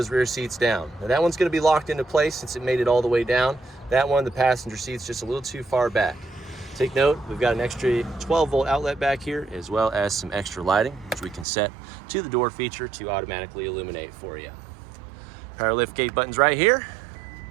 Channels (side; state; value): left; drops out; at 11.5 s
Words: rear seats down. Now that one's gonna be locked into place since it made it all the way down. That one, the passenger seat's just a little too far back. Take note, we've got an extra 12-volt outlet back here, as well as some extra lighting, which we can set to the door feature to automatically illuminate for you. Power lift gate buttons right here.